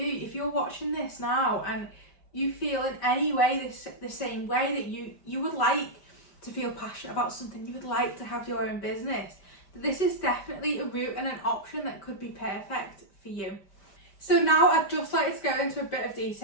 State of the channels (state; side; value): late; right; 5.1 ms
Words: if you're watching this now and you feel in any way the same way, that you would like to feel passionate about something, you would like to have your own business, this is definitely a route and an option that could be perfect for you. So now I'd just like to go into a bit of